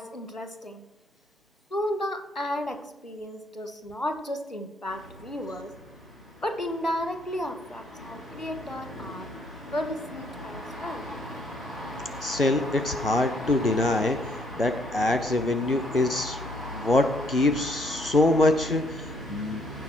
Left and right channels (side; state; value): both; normal; correlation 0.68